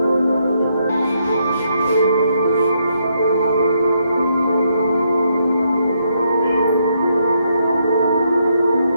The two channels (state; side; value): inverted; both; correlation -0.76